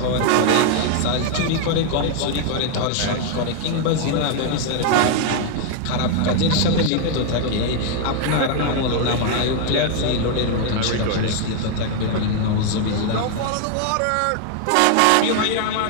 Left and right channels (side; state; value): both; different; correlation 0.00